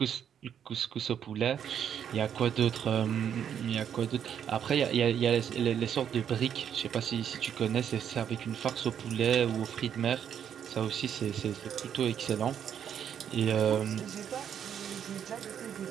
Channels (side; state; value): left; quieter; 8.8 dB